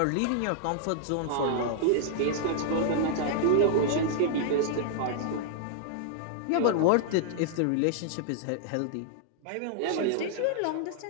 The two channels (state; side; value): different; both; correlation -0.01